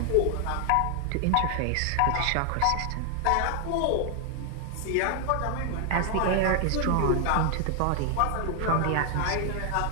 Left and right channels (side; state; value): both; different; correlation 0.00